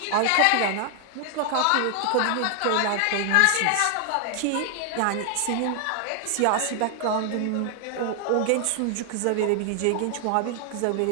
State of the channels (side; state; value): both; different; correlation 0.00